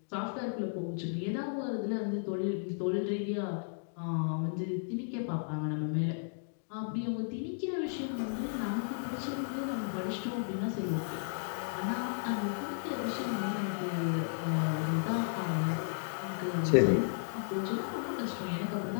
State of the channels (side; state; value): right; silent; digital silence